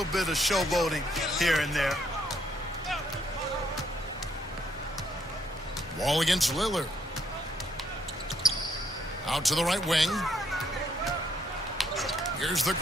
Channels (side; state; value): both; normal; correlation 0.71